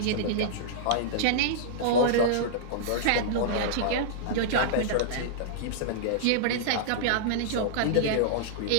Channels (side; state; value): both; different; correlation -0.02